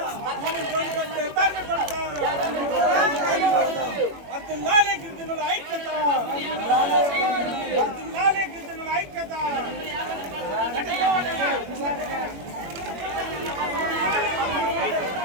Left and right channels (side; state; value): left; late; 21 ms